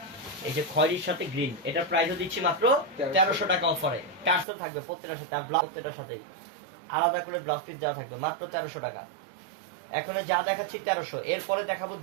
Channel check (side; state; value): left; drops out; at 4.5 s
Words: এই যে খয়েরির সাথে গ্রিন, এটার প্রাইসও দিচ্ছি মাত্র 1300 টাকা অফারে। টার্সেল থাকবে প্রত্যেকটার সাথে, আর ব্লাউজ প্রত্যেকটার সাথেই আলাদা করে ব্লাউজ পিস দেওয়া থাকবে, মাত্র 1300 টাকা। এখন যা দেখাচ্ছি 1300, এরপরে দেখাবো